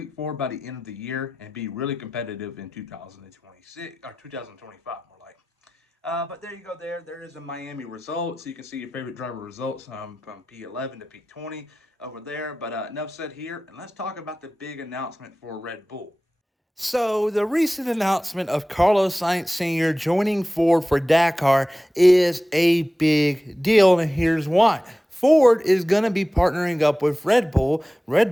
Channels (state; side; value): normal; both; correlation 0.96